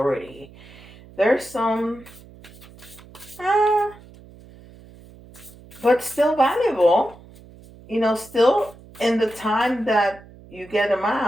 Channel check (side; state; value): right; noise; hum, 22 dB below the sound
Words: There's some, but still valuable. Still in the time that you get them